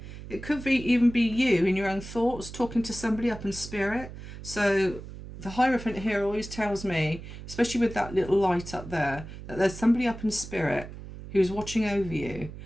It could even be you in your own thoughts talking to somebody up in spirit. So the Hierophant here always tells me, especially with that little light up there, that there's somebody up in spirit who's watching over you.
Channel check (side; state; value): right; noise; hum, 12 dB below the sound